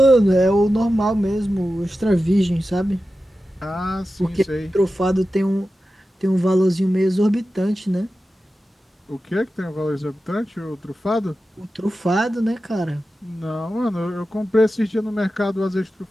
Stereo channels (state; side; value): normal; both; correlation 0.93